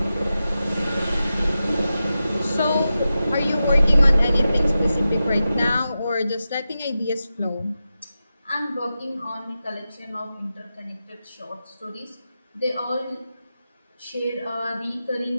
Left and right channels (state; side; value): inverted; both; correlation -0.92